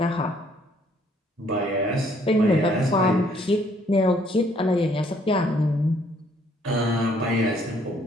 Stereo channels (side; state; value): both; normal; correlation 0.65